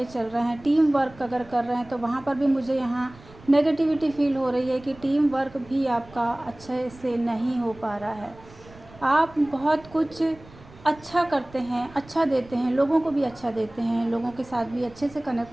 चल रहे हैं, टीम वर्क अगर कर रहे हैं, तो वहाँ पर भी मुझे यहाँ नेगेटिविटी फ़ील हो रही है कि टीम वर्क भी आपका अच्छे से नहीं हो पा रहा है। आप बहुत कुछ अच्छा करते हैं, अच्छा देते हैं, लोगों को भी अच्छा देते हैं, लोगों के साथ भी अच्छे से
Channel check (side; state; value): right; noise; rumble, 22 dB below the sound